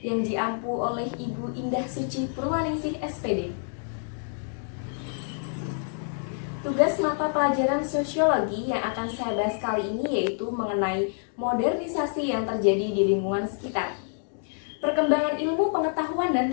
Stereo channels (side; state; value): right; silent; 60 dB below the other